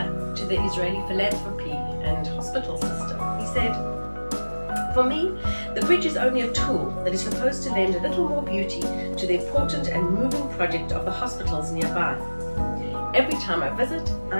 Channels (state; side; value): inverted; both; correlation -1.00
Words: to the Israeli philanthropy and hospital system. He said, "For me, the bridge is only a tool that is supposed to lend a little more beauty to the important and moving project of the hospitals nearby. Every time I visit,